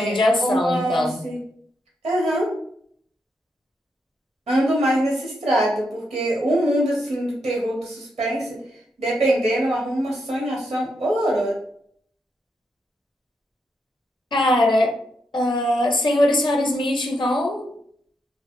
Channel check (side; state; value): both; normal; correlation 0.81